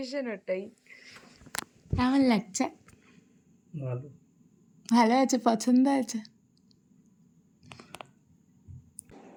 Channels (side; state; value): both; identical; correlation 1.00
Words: ওটাই। কেমন লাগছে? ভালো আছে, পছন্দ আছে?